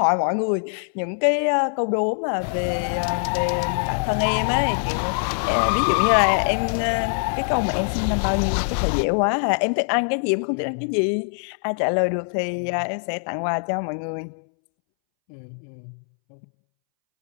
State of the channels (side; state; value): right; silent; 64 dB below the other